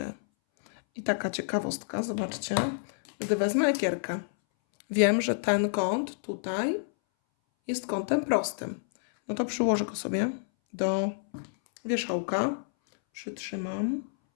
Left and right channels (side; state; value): right; silent; 59 dB below the other